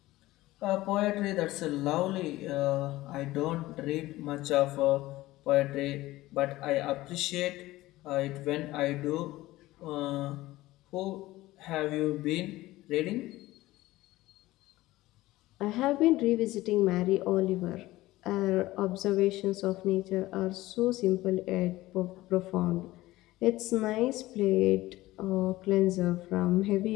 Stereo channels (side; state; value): right; quieter; 17.6 dB